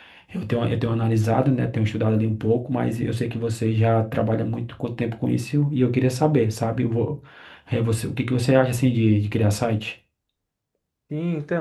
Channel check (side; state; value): both; identical; correlation 1.00